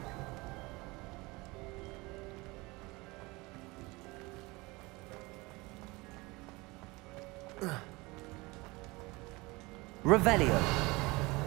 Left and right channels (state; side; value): quieter; left; 23.6 dB